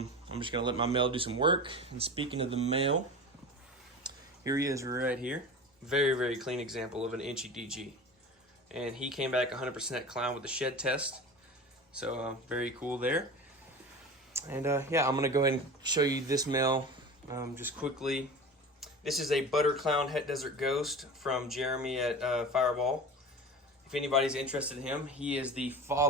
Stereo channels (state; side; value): normal; both; correlation 0.32